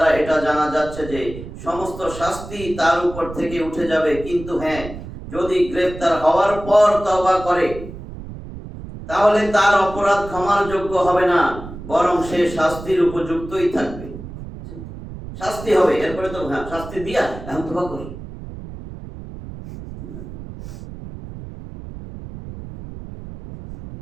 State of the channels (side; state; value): right; noise; rumble, 12 dB below the sound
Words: এটা জানা যাচ্ছে যে সমস্ত শাস্তি তার উপর থেকে উঠে যাবে, কিন্তু হ্যাঁ, যদি গ্রেফতার হওয়ার পর তওবা করে তাহলে তার অপরাধ ক্ষমার যোগ্য হবে না, বরং সে শাস্তির উপযুক্তই থাকবে। শাস্তি হবে, এরপরে তো হ্যাঁ শাস্তি দিয়া এখন তওবা কর।